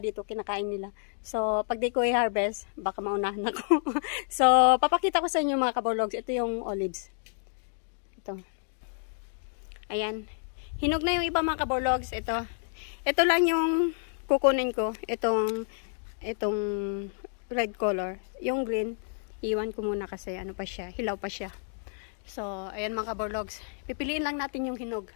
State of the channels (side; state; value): right; silent; digital silence